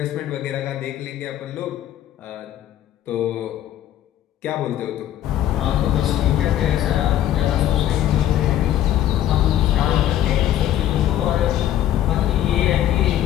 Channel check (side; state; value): right; quieter; 12.0 dB